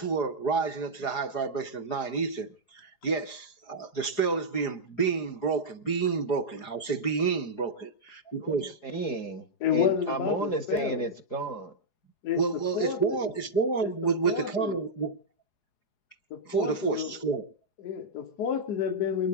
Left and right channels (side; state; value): right; late; 4.8 ms